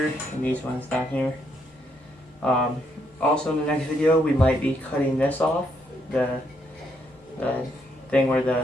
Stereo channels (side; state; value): both; normal; correlation 0.75